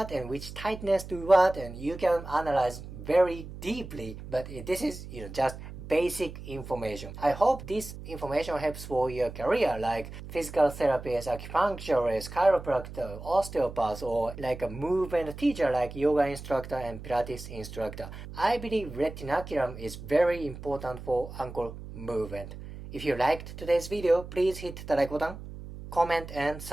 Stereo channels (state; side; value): noise; right; hum, 12 dB below the sound